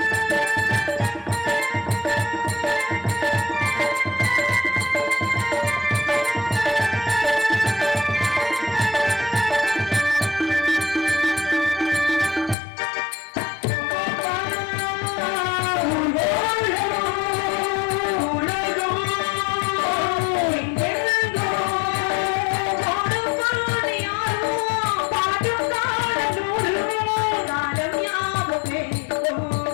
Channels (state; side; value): drops out; right; at 12.6 s